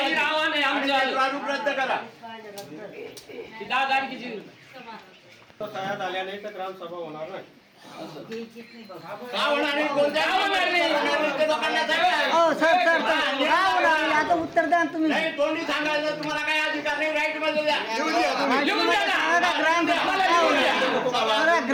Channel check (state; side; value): identical; both; correlation 1.00